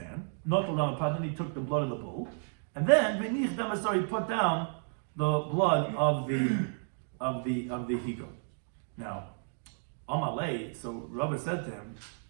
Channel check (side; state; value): left; silent; 56 dB below the other